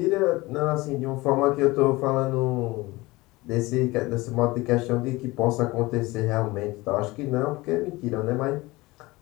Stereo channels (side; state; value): right; quieter; 21.2 dB